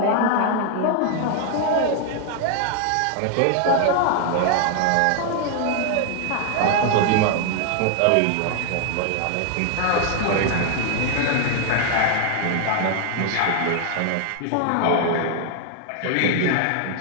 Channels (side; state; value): both; different; correlation 0.00